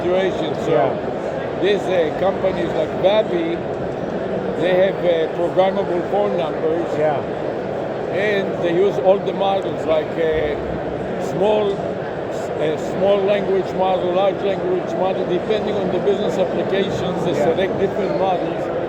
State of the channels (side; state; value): both; identical; correlation 1.00